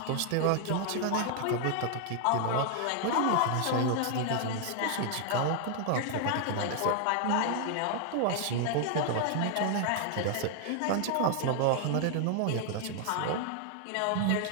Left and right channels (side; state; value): both; different; correlation 0.00